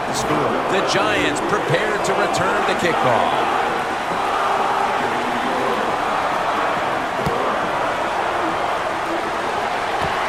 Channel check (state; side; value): noise; left; rumble, 20 dB below the sound